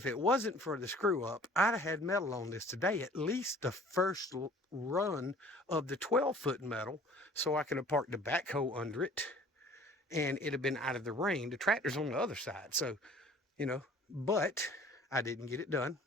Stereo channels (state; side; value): normal; both; correlation 0.50